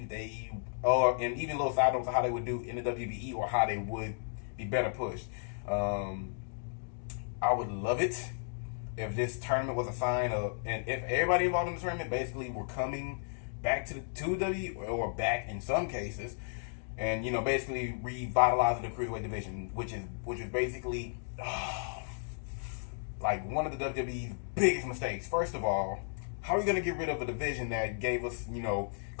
they, and even little side notes of how they would do in the WWE or how they would be better pushed. I would love it if this tournament was a sign of, and if everybody involved in the tournament basically were coming back to WWE or back in some cases, and basically revitalizing the cruiserweight division, which is basically like one of the WWE's biggest mistakes. First of all, how are you gonna get rid of a division that gave us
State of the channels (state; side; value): silent; right; digital silence